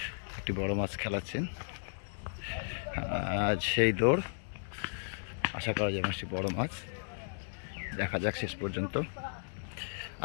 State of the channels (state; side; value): silent; right; 54 dB below the other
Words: একটি বড় মাছ খেলাচ্ছেন। আজ সেই দৌড়, আশা করা যায় মাছটি বড় মাছ, দেখা যাক শেষ পর্যন্ত।